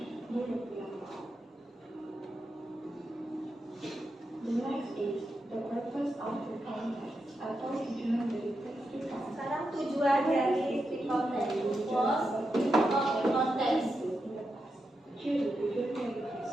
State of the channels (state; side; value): normal; both; correlation 0.87